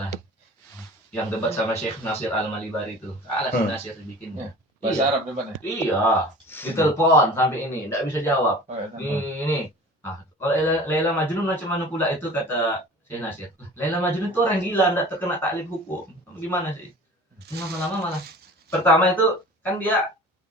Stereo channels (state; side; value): normal; both; correlation 0.42